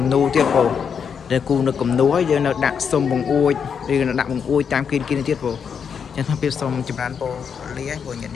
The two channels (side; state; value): right; quieter; 6.9 dB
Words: នូទៀតពោតែគូនៅគំនូហើយយើងនៅដាក់សុំបង្អួចឬនៅដាក់បង្អួចតាមគីនទៀតពោចឹងថាពីសុំចម្រើនពោលាពោញញ